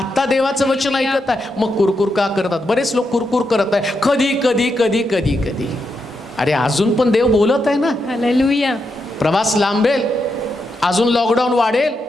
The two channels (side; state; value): both; normal; correlation 0.84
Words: देवाचं वचन Hallelujah. ऐकत आहे. मग कुरकुर का करतात? बरेच लोक कुरकुर करत आहे. कधी कधी कधी कधी कधी. अरे अजून पण देव बोलत आहे ना. Hallelujah. प्रवास लांबेल, अजून लॉकडाऊन वाढेल,